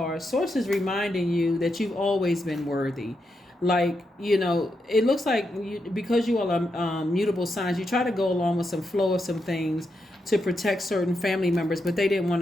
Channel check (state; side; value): normal; both; correlation 0.84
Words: Source is reminding you that you've always been worthy. Like, it looks like because you all are mutable signs, you try to go along with some flow of some things to protect certain family members, but they didn't want